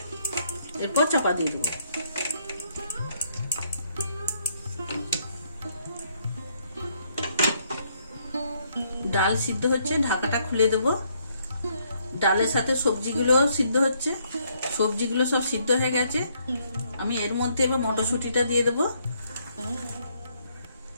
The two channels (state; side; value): inverted; both; correlation -0.71